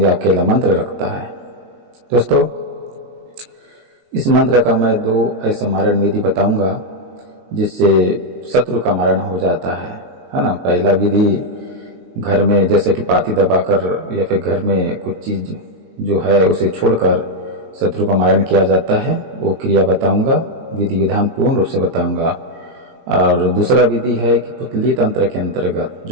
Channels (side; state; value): left; late; 22 ms